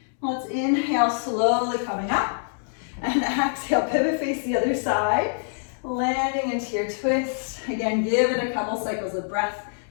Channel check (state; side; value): silent; right; digital silence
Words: let's inhale, slowly coming up, and exhale, pivot, face the other side, landing into your twist. Again, give it a couple cycles of breath